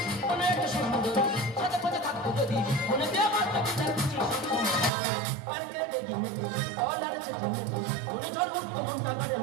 অনেক সুন্দর হাতের মধ্যে থাকতো যদি মনে দিয়ে বসতো গিটার খুশির সবসময় পার্কে ডেকে কলার চেপে মনে ঝড়মুক্ত মনটা কাটেন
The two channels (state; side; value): drops out; left; at 4.9 s